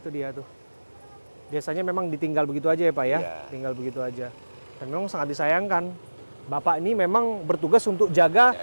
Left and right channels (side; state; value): both; inverted; correlation -1.00